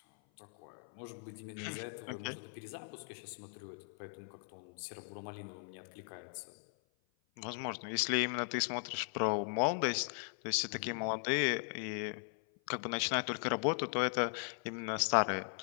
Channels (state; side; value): silent; right; 52 dB below the other